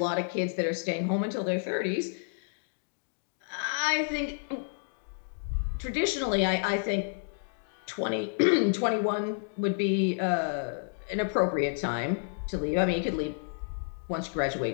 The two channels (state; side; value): silent; right; digital silence